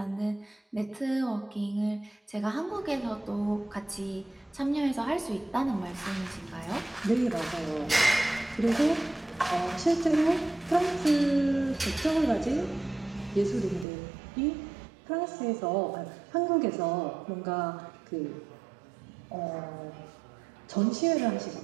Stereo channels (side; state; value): left; drops out; at 13.9 s